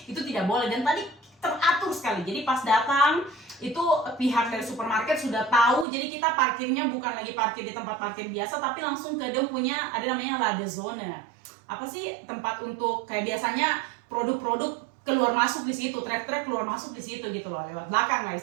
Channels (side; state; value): left; drops out; at 5.9 s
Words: itu tidak boleh. Dan tadi teratur sekali. Jadi pas datang itu pihak dari supermarket sudah tahu. Jadi kita parkirnya bukan lagi parkir di tempat parkir biasa, tapi langsung ke dia punya ada namanya ladezone. Apa sih tempat untuk kayak biasanya produk-produk keluar masuk di situ, truk-truk keluar masuk di situ gitu loh, lewat belakang lah